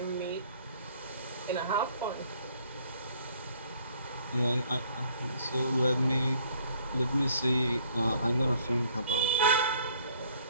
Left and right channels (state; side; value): inverted; both; correlation -0.61